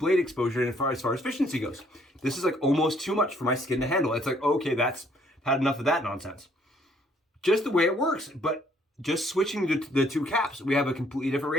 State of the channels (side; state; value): both; normal; correlation 0.65